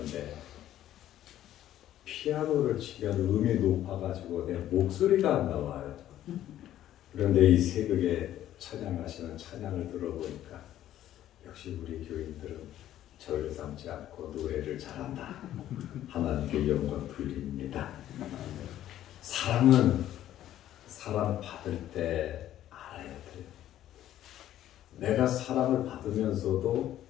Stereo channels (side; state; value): right; quieter; 12.4 dB